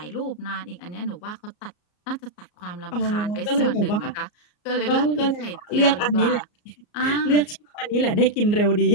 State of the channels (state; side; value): late; right; 34 ms